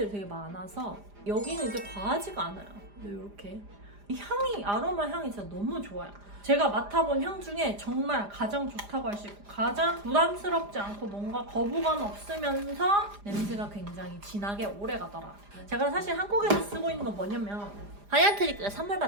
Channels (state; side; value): late; left; 4.9 ms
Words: 되게 많아서 여기는 이제 과하지가 않아요. 이렇게 향이, 아로마 향이 진짜 너무 좋아요. 제가 맡아본 향 중에 정말 가장 좋다고 할 수 있고 가장 부담스럽지 않고 뭔가 거부감 없으면서 냄새가 굉장히 진하게 오래가더라. 제가 사실 한국에서 쓰고 있는 건 뭐냐면 하얀트리크가 선물